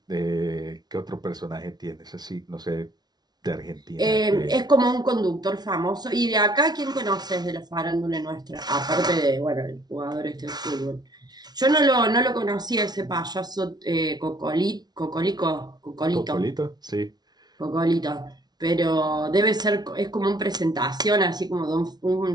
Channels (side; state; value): left; late; 0.19 ms